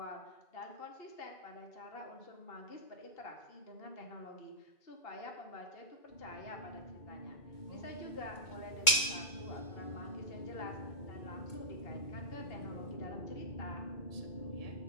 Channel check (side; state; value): right; late; 2.2 ms